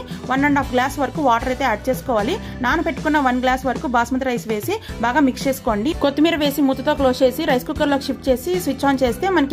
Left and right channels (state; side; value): identical; both; correlation 1.00